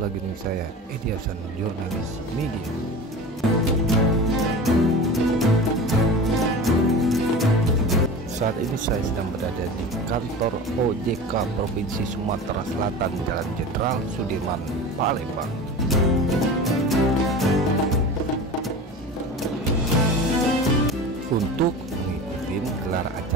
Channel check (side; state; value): both; normal; correlation 0.32